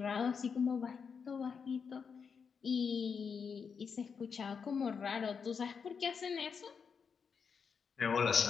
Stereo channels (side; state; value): right; quieter; 6.1 dB